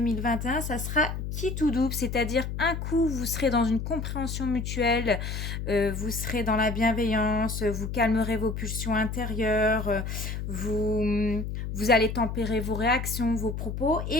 ça sera qui tout double, c'est-à-dire un coup, vous serez dans une compréhension mutuelle, vous serez dans la bienveillance, vous calmerez vos pulsions intérieures, vous allez tempérer vos réactions, vos propos,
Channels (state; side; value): noise; left; hum, 5 dB below the sound